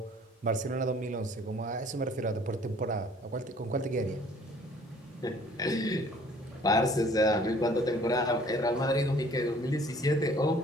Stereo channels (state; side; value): normal; both; correlation 0.54